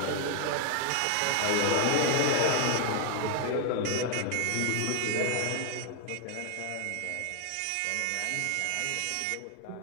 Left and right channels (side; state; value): both; different; correlation 0.01